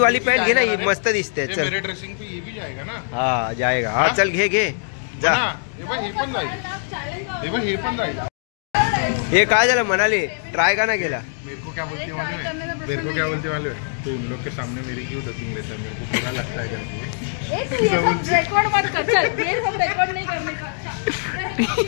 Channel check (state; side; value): silent; right; digital silence